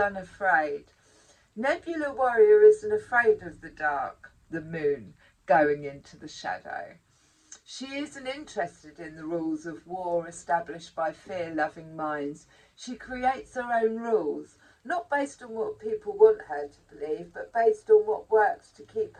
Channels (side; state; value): both; identical; correlation 1.00